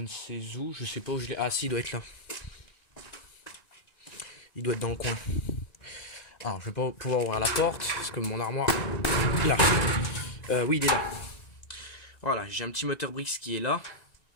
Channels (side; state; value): right; late; 1.9 ms